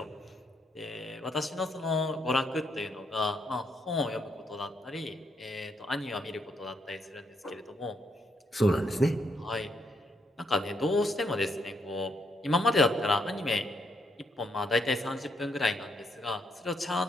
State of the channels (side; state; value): both; normal; correlation 0.75